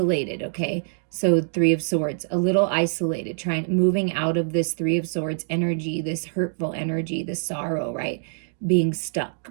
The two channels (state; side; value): silent; left; digital silence